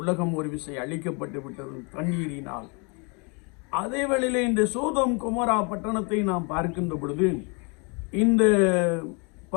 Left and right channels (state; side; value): quieter; right; 33.2 dB